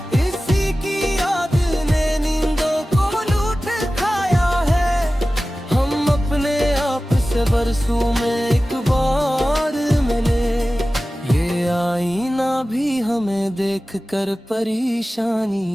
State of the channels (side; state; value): both; normal; correlation 0.96